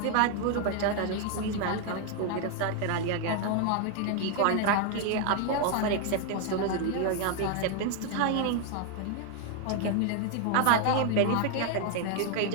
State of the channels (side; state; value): both; different; correlation 0.00